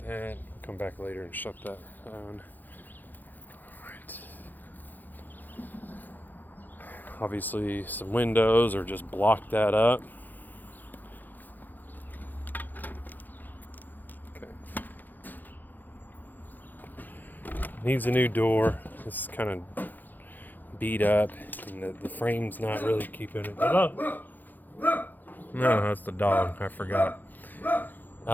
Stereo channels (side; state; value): right; late; 0.086 ms